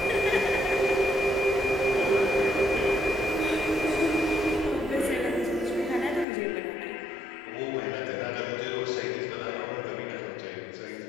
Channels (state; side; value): drops out; right; at 6.2 s